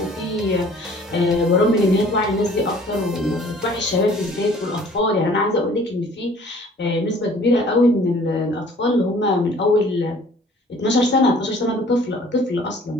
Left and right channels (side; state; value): both; normal; correlation 0.53